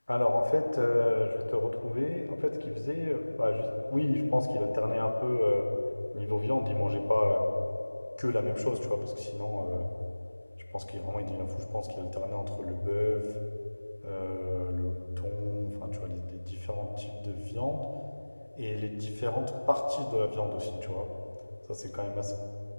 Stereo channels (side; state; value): both; inverted; correlation -1.00